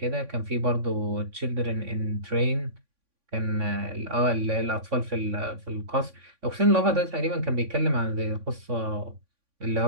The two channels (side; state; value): left; late; 3.6 ms